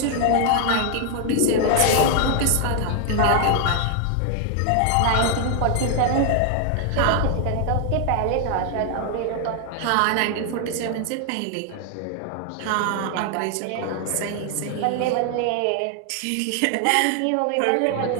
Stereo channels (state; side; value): different; both; correlation 0.00